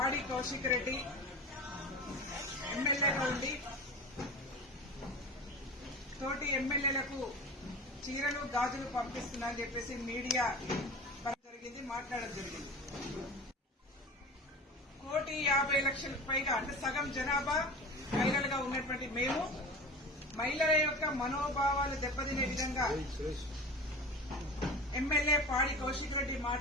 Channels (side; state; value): both; normal; correlation 0.33